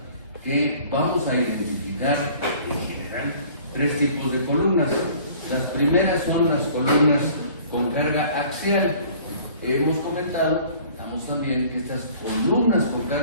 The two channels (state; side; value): inverted; both; correlation -0.51